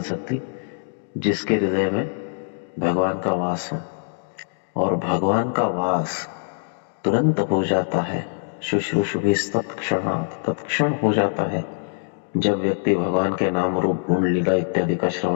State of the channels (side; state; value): right; silent; digital silence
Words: सकती जिसके हृदय में भगवान का वास हो। और भगवान का वास तुरंत हो जाता है, शुश्रूषुभिस्तत्क्षणात्, तत्क्षण हो जाता है जब व्यक्ति भगवान के नाम रूप गुण लीला इत्यादि का